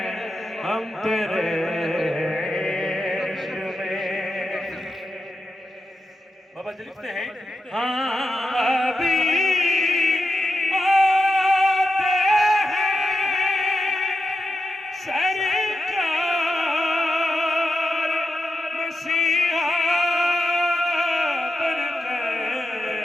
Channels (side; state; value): both; normal; correlation 0.88